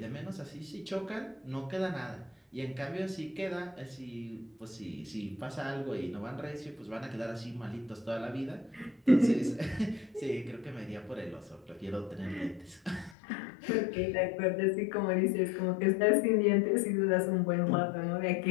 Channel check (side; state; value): right; drops out; at 13.2 s